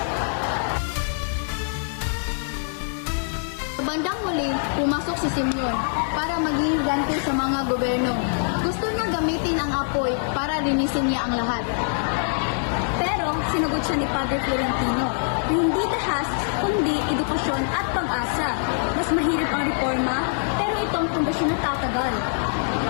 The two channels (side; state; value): right; silent; digital silence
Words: Sa bandang huli, pumasok si Simeon para maging ganti sa mga gobyerno. Gusto niya gamitin ang apoy para linisin niya ang lahat. Pero sinagot siya ni Padre Florentino, hindi dahas, kundi edukasyon at pag-asa. Mas mahirap ang reforma, pero itong pundasyon na tatagal.